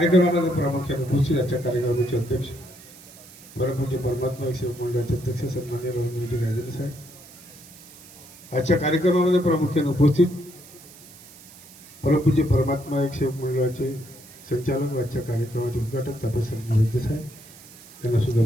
प्रामुख्याने उपस्थित आजच्या कार्यक्रमाचे अध्यक्ष परमपूज्य परमात्मा एक सेवक मंडळाचे अध्यक्ष सन्मान्य रवींद्रजी राजेंद्र साहेब. आजच्या कार्यक्रमामध्ये प्रामुख्याने उपस्थित परमपूज्य परमात्मा एक सेवक मंडळाचे संचालक व आजच्या कार्यक्रमाचे उद्घाटक तापसराव वैद्य साहेब यांना सुद्धा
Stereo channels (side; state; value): right; noise; hiss, 20 dB below the sound